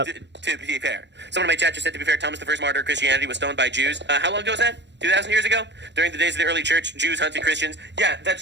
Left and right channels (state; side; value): late; left; 0.51 ms